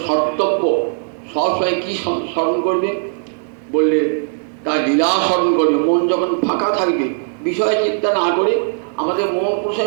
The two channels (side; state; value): left; silent; digital silence